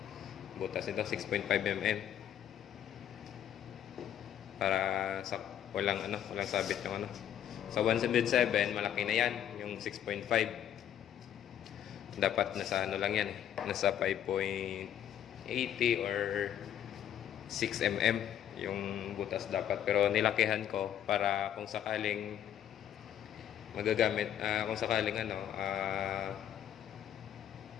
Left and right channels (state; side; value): quieter; right; 10.2 dB